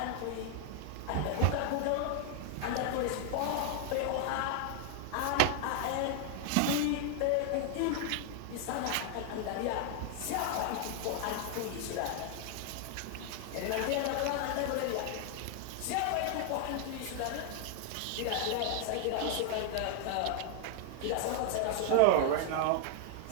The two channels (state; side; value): different; both; correlation 0.00